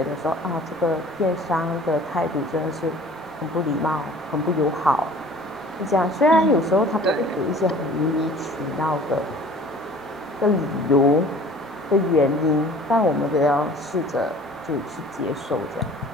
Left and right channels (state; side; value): normal; both; correlation 0.48